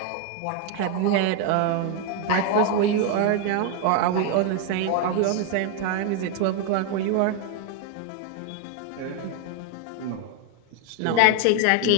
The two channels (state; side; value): different; both; correlation 0.01